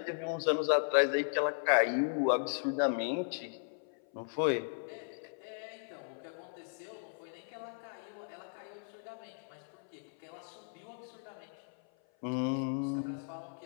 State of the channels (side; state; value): right; silent; 54 dB below the other